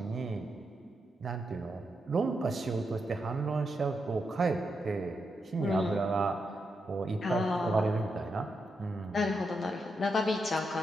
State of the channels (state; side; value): normal; both; correlation 0.84